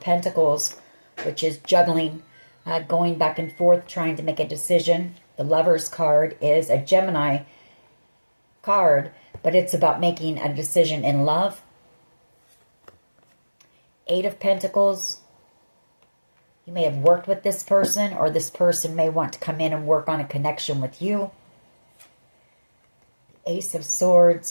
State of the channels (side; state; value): both; inverted; correlation -1.00